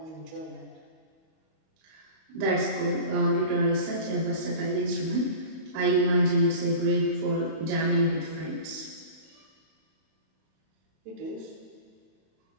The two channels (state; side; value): late; left; 31 ms